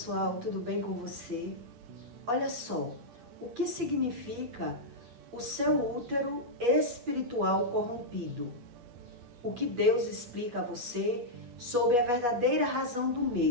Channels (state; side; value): late; left; 8.3 ms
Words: tudo bem com você? Olha só, o que significa o seu útero espiritual corrompido? O que Deus explica a você sobre a verdadeira razão do